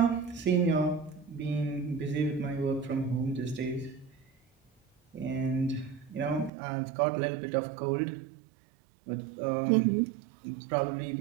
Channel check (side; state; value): left; drops out; at 6.5 s